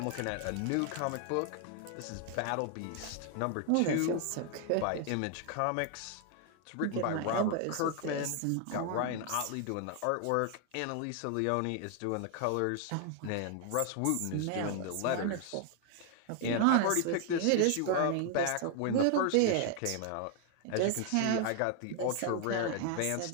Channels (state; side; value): different; both; correlation 0.00